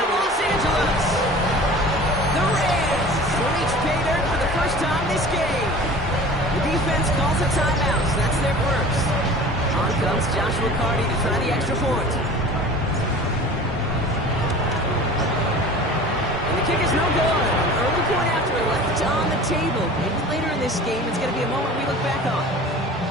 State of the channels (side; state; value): both; normal; correlation 0.41